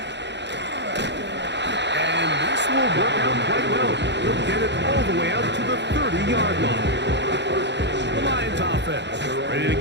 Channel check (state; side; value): late; left; 0.51 ms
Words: And this will work out quite well. He'll get it all the way out to the 30-yard line. The Lions offense ready to